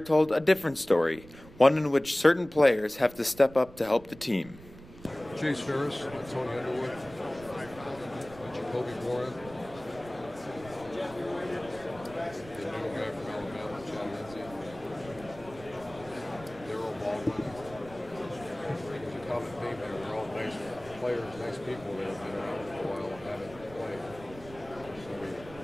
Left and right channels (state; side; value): noise; right; rumble, 18 dB below the sound